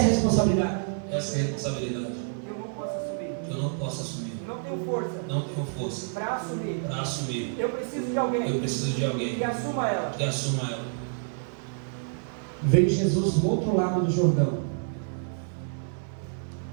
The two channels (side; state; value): left; silent; 59 dB below the other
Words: a responsabilidade. Essa é a responsabilidade. Que eu não posso assumir. Que eu não posso assumir. Não tenho força. Não tenho força. Para assumir. Para assumir. Eu preciso de alguém. Eu preciso de alguém que assuma ela. que assuma ela. Veio Jesus do outro lado do Jordão.